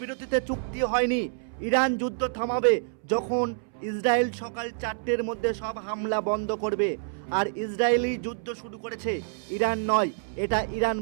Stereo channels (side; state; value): left; silent; 60 dB below the other